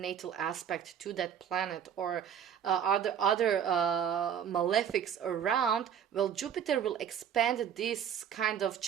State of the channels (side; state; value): left; quieter; 8.6 dB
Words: aspect to that planet or other malefics around, well, Jupiter will expand this kind of